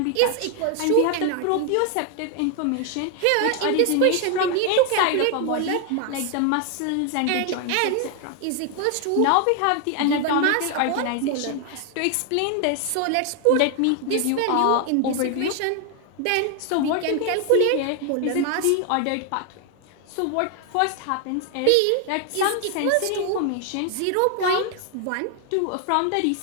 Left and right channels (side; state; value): both; different; correlation 0.00